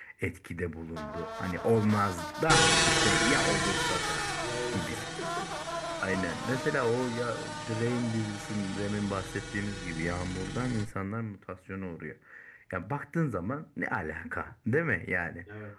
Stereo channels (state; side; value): identical; both; correlation 1.00